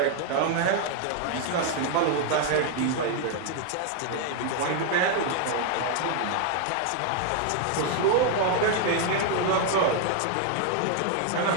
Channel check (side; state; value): both; different; correlation 0.00